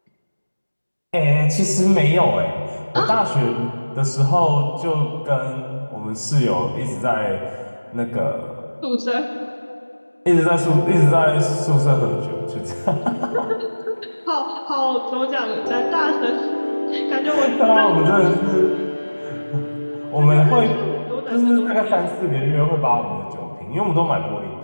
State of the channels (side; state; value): both; inverted; correlation -1.00